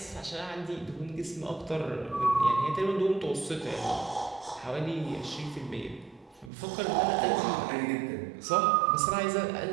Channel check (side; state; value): left; drops out; at 6.5 s